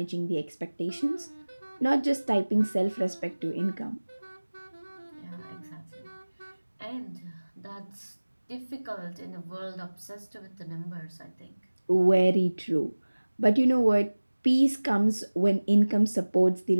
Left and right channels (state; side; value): inverted; both; correlation -1.00